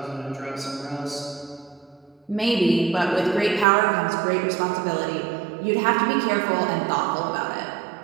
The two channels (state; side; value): drops out; left; at 3.7 s